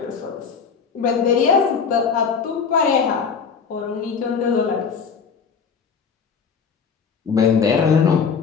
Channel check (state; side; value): quieter; right; 6.0 dB